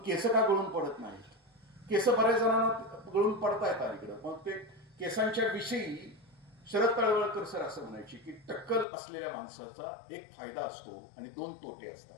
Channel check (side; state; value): right; drops out; at 8.8 s